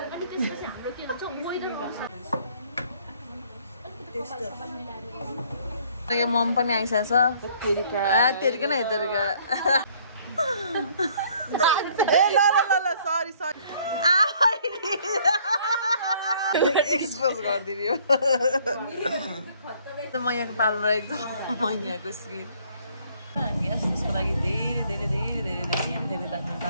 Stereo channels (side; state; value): both; inverted; correlation -0.61